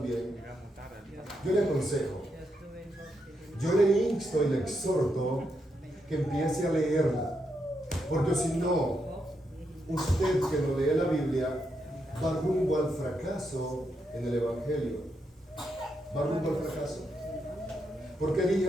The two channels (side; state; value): both; normal; correlation 0.82